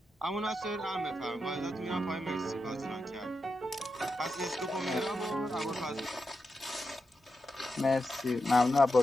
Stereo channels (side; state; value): both; normal; correlation 0.87